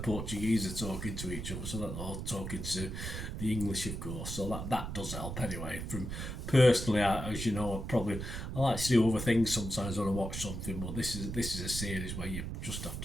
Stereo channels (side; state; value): right; noise; rumble, 5 dB below the sound